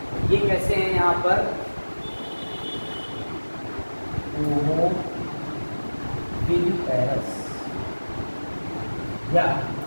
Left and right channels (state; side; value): inverted; both; correlation -1.00